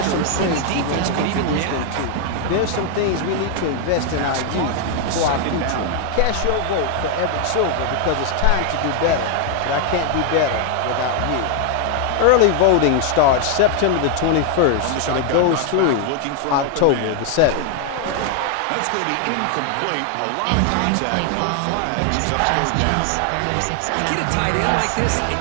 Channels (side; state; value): both; different; correlation 0.00